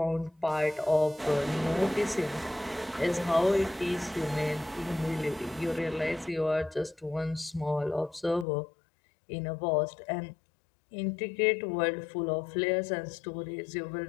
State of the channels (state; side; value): drops out; right; at 8.5 s